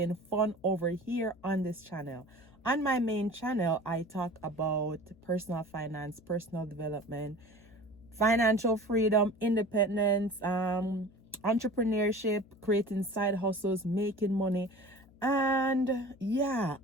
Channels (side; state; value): left; noise; hum, 26 dB below the sound